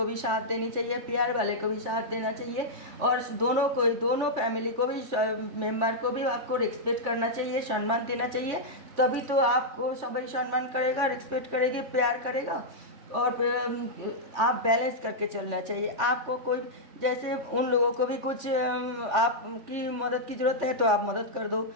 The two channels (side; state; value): left; late; 3.4 ms